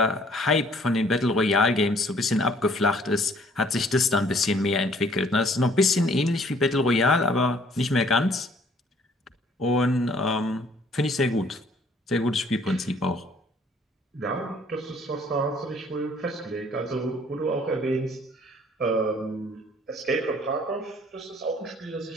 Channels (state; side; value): normal; both; correlation 0.59